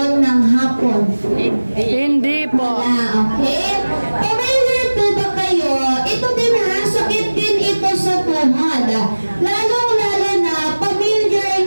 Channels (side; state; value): both; inverted; correlation -1.00